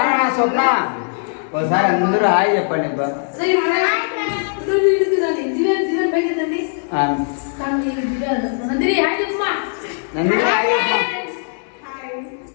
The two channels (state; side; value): silent; right; digital silence